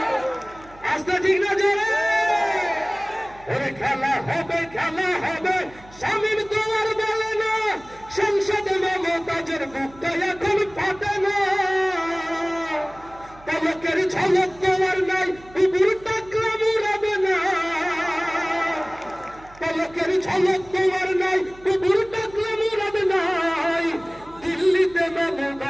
আসতে ঠিক না জোরে? ওই খেলা হবে, খেলা হবে, শামীম তো আর বলে না, সংসদে মমতাজের বুকটা এখন ফাটে না। পলকের ঝলক তোমার নাই, বুবুর টাকলাম উড়াবে না। পলকের ঝলক তোমার নাই, বুবুর টাকলাম উড়াবে নাই। দিল্লিতে মামু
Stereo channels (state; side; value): noise; right; hum, 23 dB below the sound